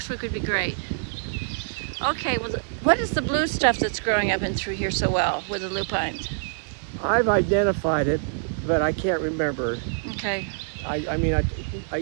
week would be great. Okay, well, what is the blue stuff that's growing up and through here so well with the lupines? I've identified it, but I can't remember. Okay. I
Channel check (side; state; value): left; silent; 62 dB below the other